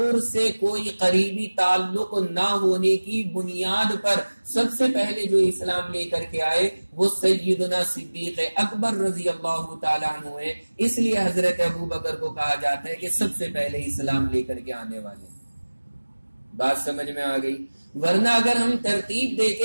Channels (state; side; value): inverted; both; correlation -1.00